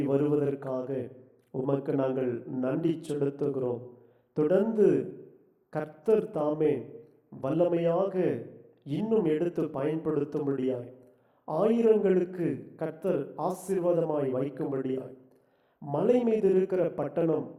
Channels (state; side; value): identical; both; correlation 1.00